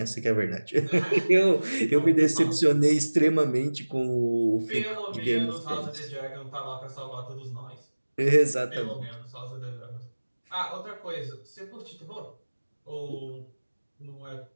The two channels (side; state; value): both; inverted; correlation -1.00